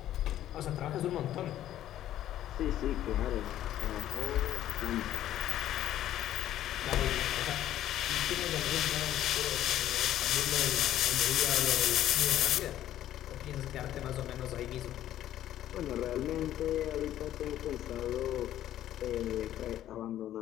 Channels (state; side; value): quieter; right; 12.4 dB